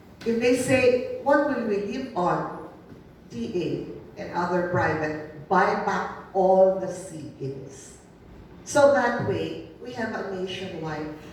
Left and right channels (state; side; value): identical; both; correlation 1.00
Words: If they say, what will we live on? DA and other private, buy back all the seedlings. So that way, we have a nationwide.